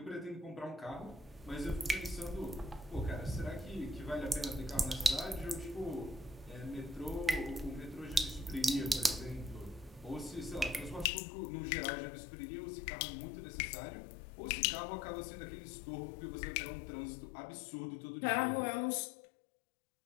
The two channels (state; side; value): drops out; right; at 11.1 s